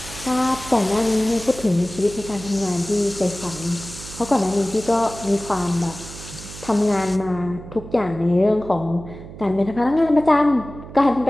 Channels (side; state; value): right; noise; hum, 14 dB below the sound